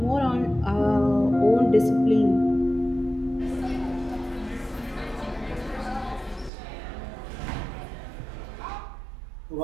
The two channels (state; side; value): drops out; left; at 6.5 s